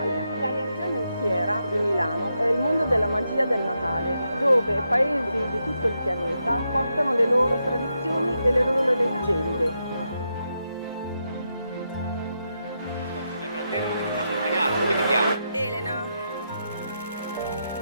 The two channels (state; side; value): inverted; both; correlation -0.83